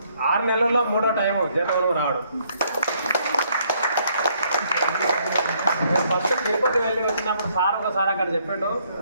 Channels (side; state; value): both; inverted; correlation -0.69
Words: 6 నెలల్లో 3వ టైము జేతవనం రావడం. నేను ఫస్ట్ తిరుపతి వెళ్ళి వచ్చినప్పుడు సార్ ఒకసారి అక్కడ చెప్పిండు.